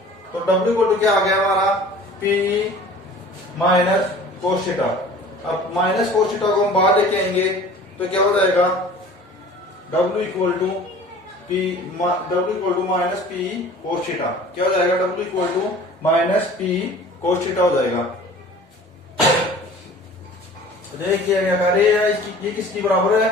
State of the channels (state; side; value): normal; both; correlation 0.45